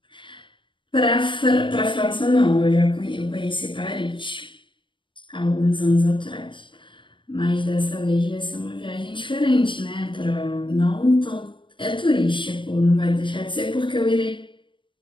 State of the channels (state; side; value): late; right; 0.24 ms